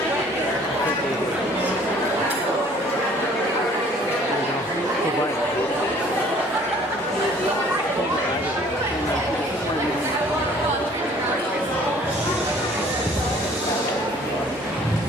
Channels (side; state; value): both; normal; correlation 0.55